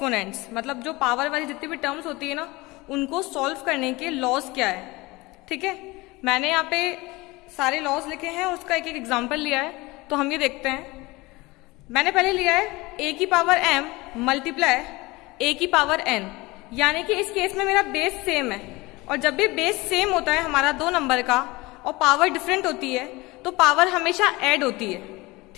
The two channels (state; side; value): quieter; right; 22.2 dB